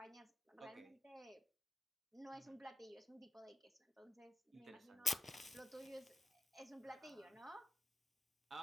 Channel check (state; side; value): normal; both; correlation 0.89